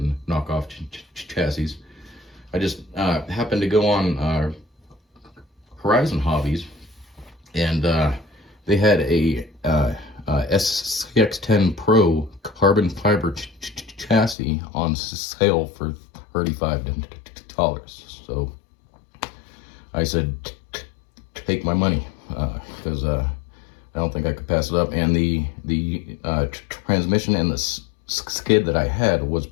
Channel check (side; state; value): right; drops out; at 14.4 s